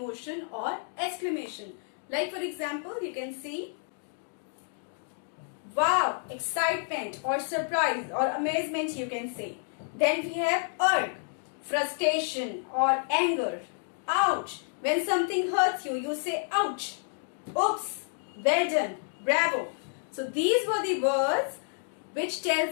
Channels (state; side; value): silent; right; 58 dB below the other